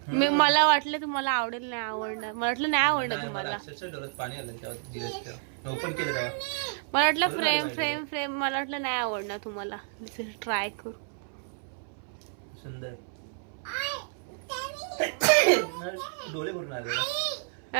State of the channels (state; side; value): silent; left; 58 dB below the other